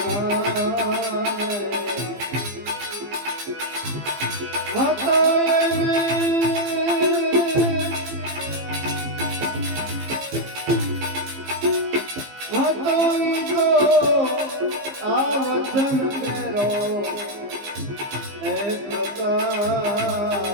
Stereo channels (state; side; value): late; left; 15 ms